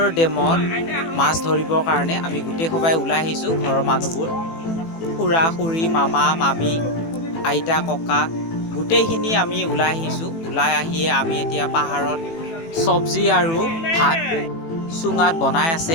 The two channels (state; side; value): late; right; 18 ms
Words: ডেমত মাছ ধৰিবৰ কাৰণে আমি গোটেই সবাই ওলাই আহিছোঁ। ঘৰৰ মানুহবোৰ, খুৰা খুৰী, মামা মামী, আইতা ককা গোটেইখিনি আমি ওলাই আহিছোঁ। ওলাই আহিয়ে আমি এতিয়া পাহাৰত চব্জি আৰু ভাত চুঙাত বনাই আছে।